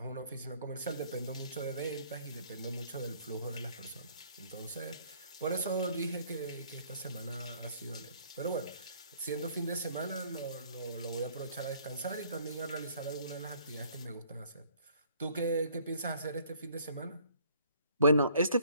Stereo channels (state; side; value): inverted; both; correlation -0.61